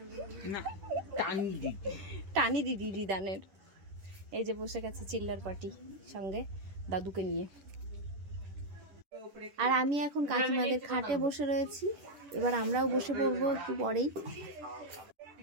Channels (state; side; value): late; left; 10 ms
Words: টানি দিদি রিদানের। এই যে বসে গেছে চিল্লার পার্টি সঙ্গে দাদুকে নিয়ে। আর আমি এখন কাকিমাদের খাটে বসে রয়েছি, এবার আমরাও বসে পড়বো একটু পরেই।